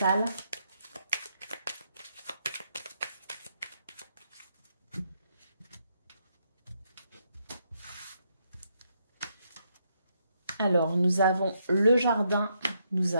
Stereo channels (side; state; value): both; inverted; correlation -0.77